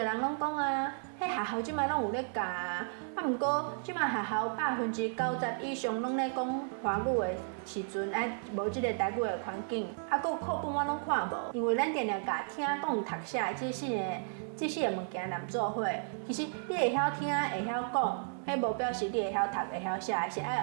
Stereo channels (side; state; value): left; silent; digital silence